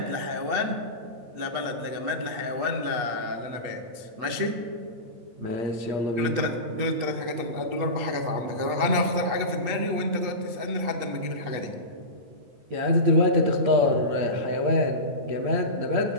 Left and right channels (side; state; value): left; late; 8.2 ms